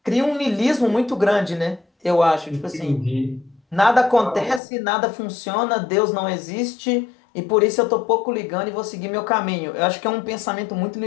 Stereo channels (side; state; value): right; drops out; at 4.6 s